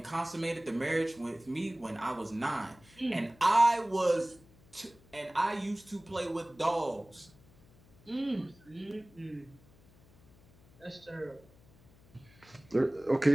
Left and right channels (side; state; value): left; noise; hum, 27 dB below the sound